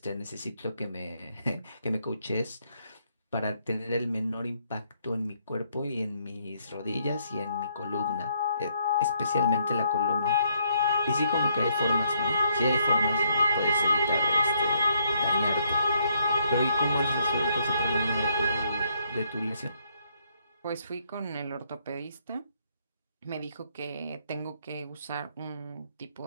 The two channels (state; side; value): inverted; both; correlation -0.72